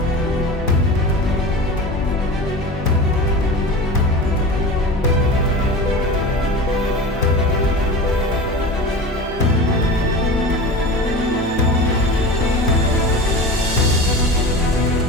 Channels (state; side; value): normal; both; correlation 0.32